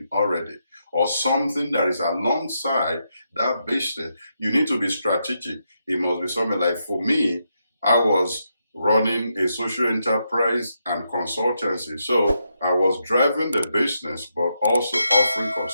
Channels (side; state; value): both; inverted; correlation -0.82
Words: already, or something that is alongside that business. You need to be strategic. It must be something like, for me, I was running a social enterprise and consultancy. So I was driving the business, but also offering